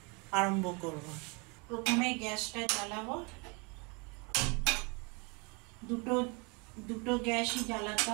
আরম্ভ করব। প্রথমে গ্যাসটা জ্বালাবো। দুটো গ্যাসই জ্বালাতে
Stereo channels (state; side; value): quieter; left; 31.1 dB